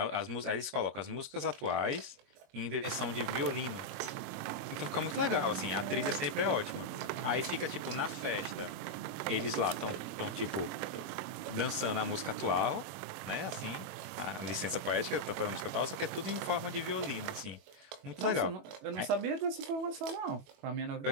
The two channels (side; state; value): left; late; 21 ms